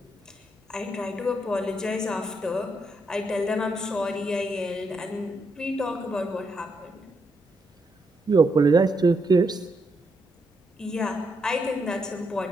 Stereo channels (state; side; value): normal; both; correlation 0.79